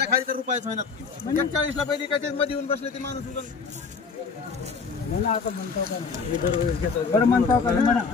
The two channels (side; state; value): right; quieter; 5.1 dB